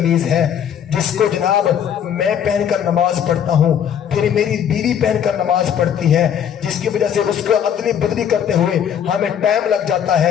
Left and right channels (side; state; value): right; quieter; 8.8 dB